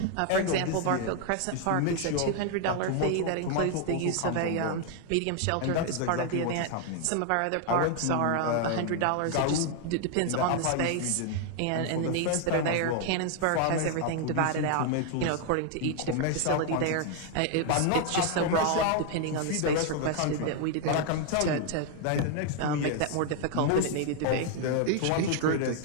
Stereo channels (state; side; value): different; both; correlation 0.00